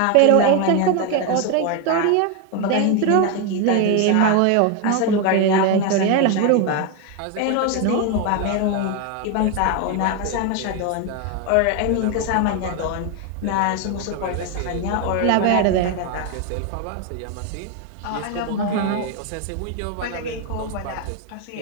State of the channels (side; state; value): both; different; correlation 0.01